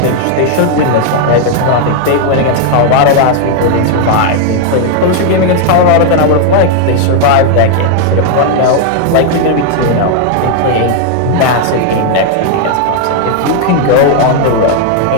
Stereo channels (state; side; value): different; both; correlation 0.00